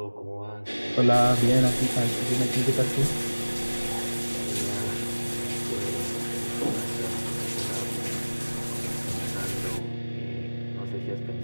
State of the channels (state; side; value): inverted; both; correlation -1.00